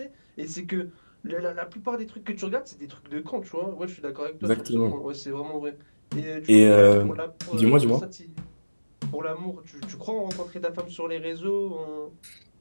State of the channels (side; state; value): both; inverted; correlation -1.00